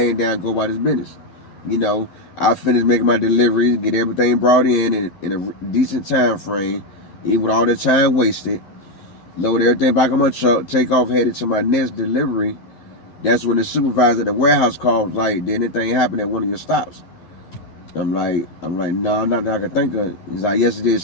down, go about his business. You know, I finished making my deliveries, get everything brought in a decent time frame, even with all the time wasted. Load everything back on my truck, take off, headed to my next delivery. That's when the supervisor at the warehouse called, like, did anything happen at one of your stops? I'm like, no, not that I can think of. He's like, yes, it did.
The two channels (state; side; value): late; right; 12 ms